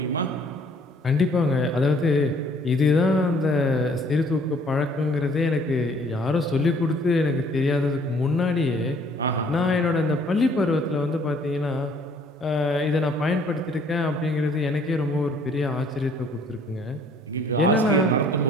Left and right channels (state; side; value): normal; both; correlation 0.59